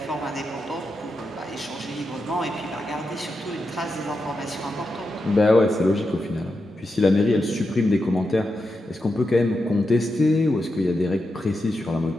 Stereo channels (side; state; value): both; normal; correlation 0.87